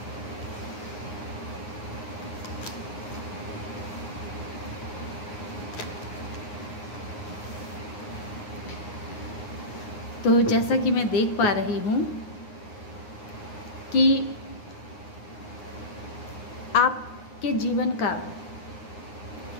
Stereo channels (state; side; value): late; right; 9.6 ms